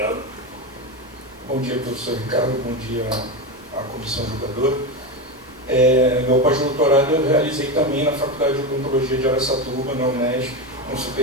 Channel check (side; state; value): both; normal; correlation 0.16